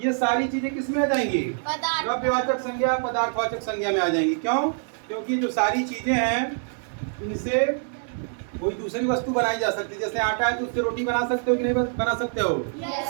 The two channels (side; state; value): left; silent; 62 dB below the other